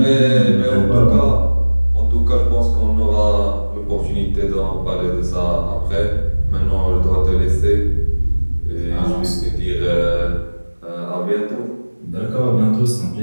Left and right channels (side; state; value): both; inverted; correlation -1.00